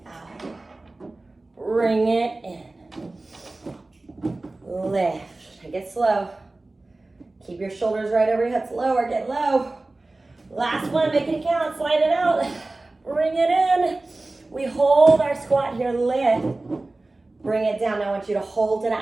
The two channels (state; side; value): quieter; left; 3.0 dB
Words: out, bring it in, lift, take it slow, keep your shoulders right over your hips, lower, get low, last one, make it count, slide it out, bring it in, we hold our squat here, lift, bring it down. Now I want you to hold it